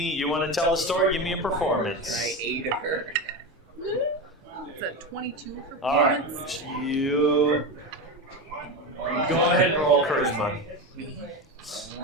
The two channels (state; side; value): normal; both; correlation 0.20